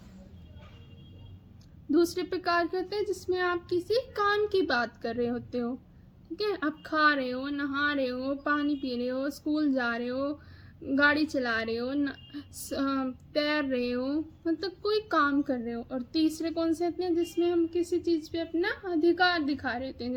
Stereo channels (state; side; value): identical; both; correlation 1.00